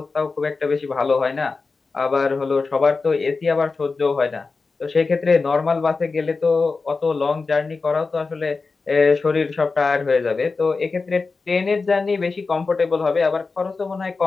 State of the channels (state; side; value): quieter; right; 4.2 dB